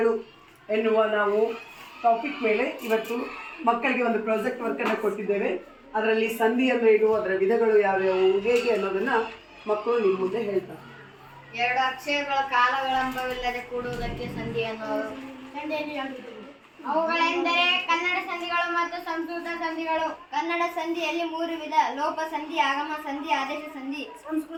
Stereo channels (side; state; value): both; identical; correlation 1.00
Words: ಎನ್ನುವ ನಾವು ಟಾಪಿಕ್ ಮೇಲೆ ಇವತ್ತು ಮಕ್ಕಳಿಗೆ ಒಂದು ಪ್ರಾಜೆಕ್ಟ್ ವರ್ಕನ್ನು ಕೊಟ್ಟಿದ್ದೇವೆ. ಅದರಲ್ಲಿ ಸಂಧಿ ಅಂದರೆ ಏನು, ಅದರ ವಿಧಗಳು ಯಾವ್ಯಾವು, ಹೇಗೆ ಅನ್ನೋದನ್ನು ಮಕ್ಕಳು ನಿಮ್ಮ ಮುಂದೆ ಹೇಳ್ತಾರೆ. ಎರಡು ಅಕ್ಷರಗಳ ಕಾಲವಿಳಂಬವಿಲ್ಲದೆ ಕೂಡುವುದಕ್ಕೆ ಸಂಧಿ ಅನ್ನುವರು. ಅವುಗಳೆಂದರೆ ಕನ್ನಡ ಸಂಧಿಗಳು ಮತ್ತು ಸಂಸ್ಕೃತ ಸಂಧಿಗಳು. ಕನ್ನಡ ಸಂಧಿಯಲ್ಲಿ 3 ವಿಧ: ಲೋಪ ಸಂಧಿ, ಆಗಮ ಸಂಧಿ, ಆದೇಶ ಸಂಧಿ.